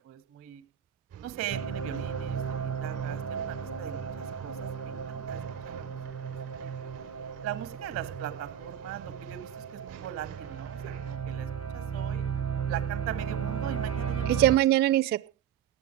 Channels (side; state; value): left; quieter; 9.9 dB